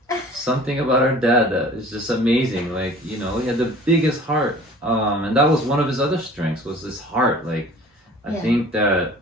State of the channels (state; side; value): normal; both; correlation 0.46